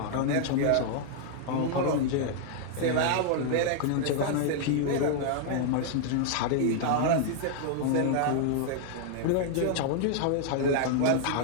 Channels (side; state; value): both; different; correlation -0.01